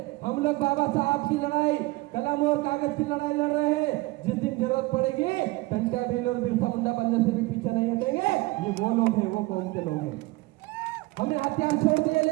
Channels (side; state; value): left; quieter; 21.7 dB